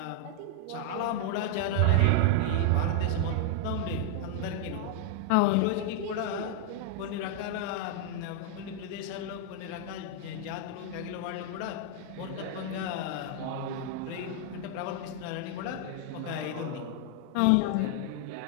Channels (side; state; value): both; different; correlation 0.00